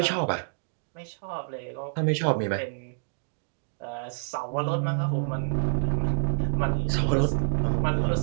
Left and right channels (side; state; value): left; silent; digital silence